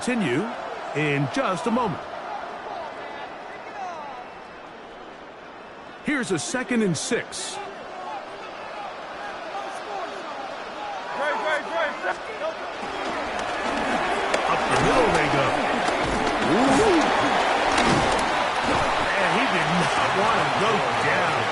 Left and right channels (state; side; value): identical; both; correlation 1.00